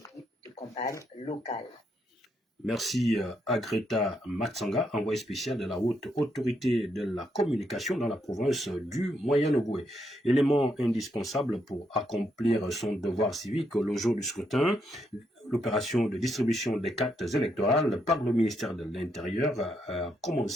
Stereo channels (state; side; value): normal; both; correlation 0.78